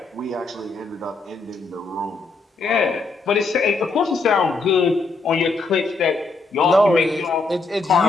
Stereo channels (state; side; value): quieter; right; 3.8 dB